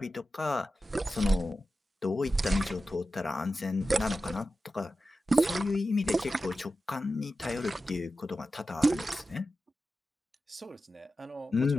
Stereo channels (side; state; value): both; normal; correlation 0.93